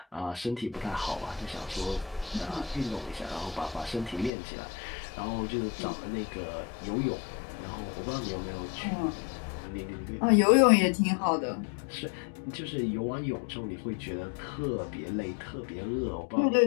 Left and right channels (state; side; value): drops out; right; at 4.3 s